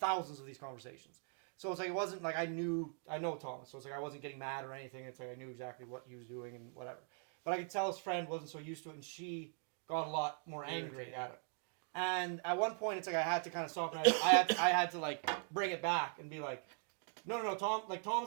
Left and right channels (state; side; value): silent; left; 50 dB below the other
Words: of these conversations. So it's like, it wasn't like I know Thomas. So it's like I wasn't getting mad or anything. It's like I knew exactly what he was doing and whatever. But I could tell his friend wasn't so used to it, and she got a lot more angry at him. And at one point, it's like I had to kind of stop, and I had to like bring it back and be like, no,